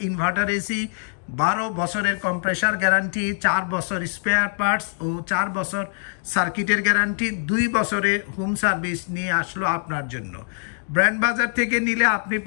ইনভার্টার এসি। 12 বছরের কম্প্রেসার গ্যারান্টি, 4 বছর স্পেয়ার পার্টস ও 4 বছর সার্কিটের গ্যারান্টি, 2 বছরের হোম সার্ভিস নিয়ে আসলো আপনার জন্য। ব্র্যান্ড বাজার থেকে নিলে আপনি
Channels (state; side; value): silent; right; 56 dB below the other